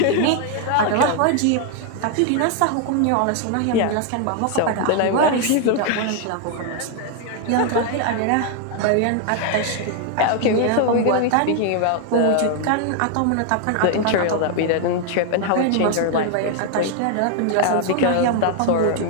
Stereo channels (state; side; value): different; both; correlation 0.00